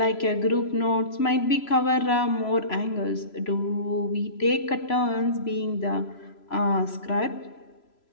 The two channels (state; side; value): late; right; 3.0 ms